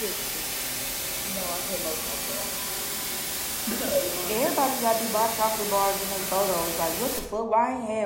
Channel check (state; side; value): identical; both; correlation 1.00